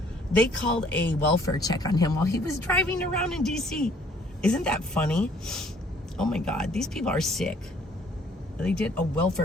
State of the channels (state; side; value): normal; both; correlation 0.60